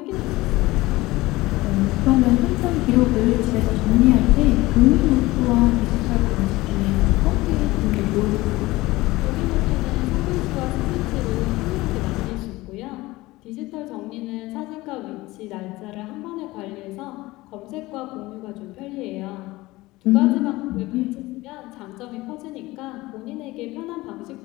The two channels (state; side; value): quieter; right; 19.6 dB